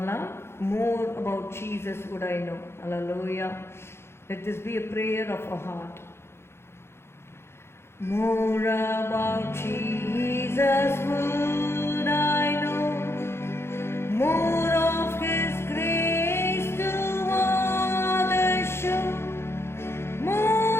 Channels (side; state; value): right; late; 0.12 ms